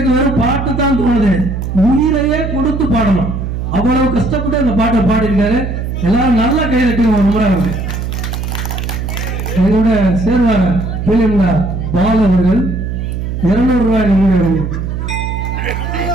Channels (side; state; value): right; noise; hum, 4 dB below the sound